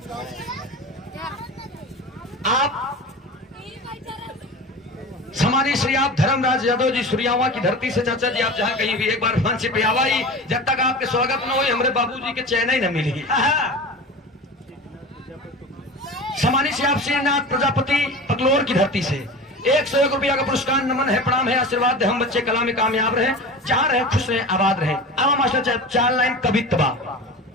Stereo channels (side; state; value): both; normal; correlation 0.32